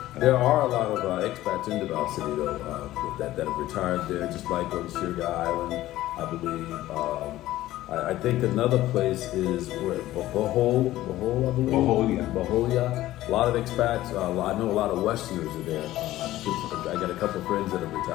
there are a lot of expats in Davao City though that have retired there, just like on Sugar Island, I believe. I think another place is where Bohol, I believe. Boholia. A lot of expats. I know a lot of Westerners are there. I got a couple of friends that have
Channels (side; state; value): right; quieter; 15.3 dB